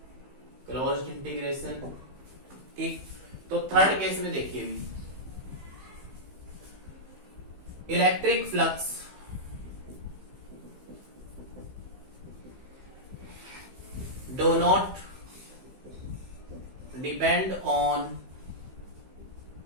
क्लोज्ड इंटीग्रेशन, ठीक। तो थर्ड केस में देखिए electric flux do not depend on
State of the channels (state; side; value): late; left; 15 ms